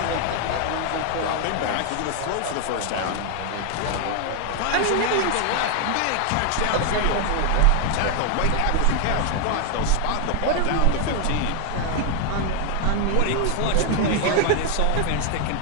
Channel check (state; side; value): different; both; correlation 0.00